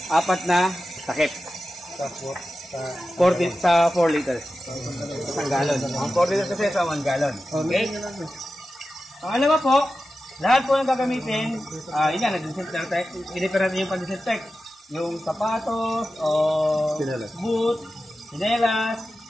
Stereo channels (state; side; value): normal; both; correlation 0.93